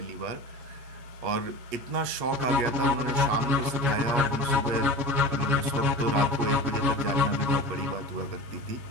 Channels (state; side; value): late; left; 8.3 ms